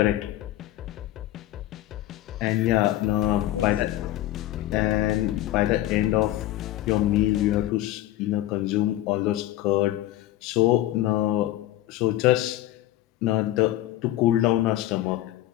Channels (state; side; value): quieter; right; 14.7 dB